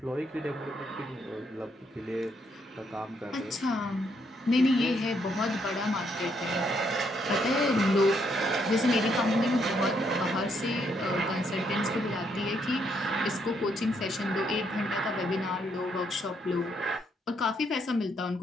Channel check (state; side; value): normal; both; correlation 0.74